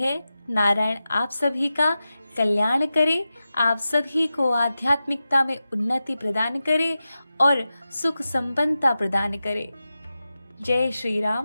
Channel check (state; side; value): inverted; both; correlation -0.93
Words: नारायण आप सभी का कल्याण करे, आप सभी को आध्यात्मिकता में उन्नति प्रदान करे और सुख संपन्नता प्रदान करे। जय श्री